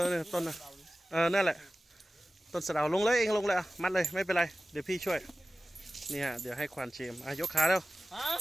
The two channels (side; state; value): both; normal; correlation 0.96